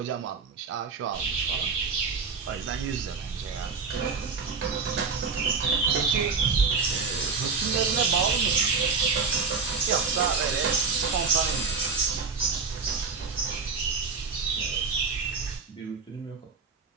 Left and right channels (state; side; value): quieter; left; 5.0 dB